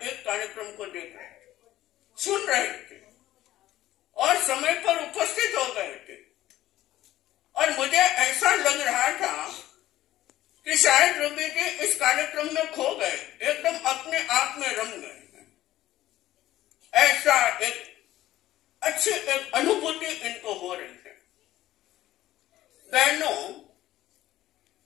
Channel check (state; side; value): quieter; right; 14.6 dB